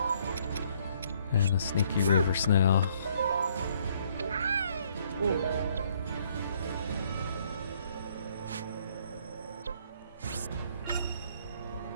And a sneaky river snail.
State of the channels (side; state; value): both; inverted; correlation -0.65